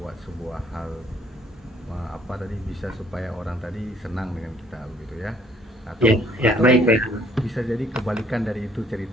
sebuah hal apa tadi bisa supaya orang tadi senang dengan kita begitu ya. Atau Baik. bisa jadi kebalikan dari itu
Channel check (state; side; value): normal; both; correlation 0.62